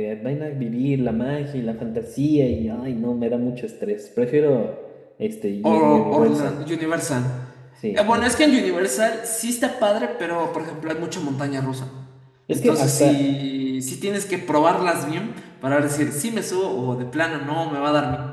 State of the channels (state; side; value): identical; both; correlation 1.00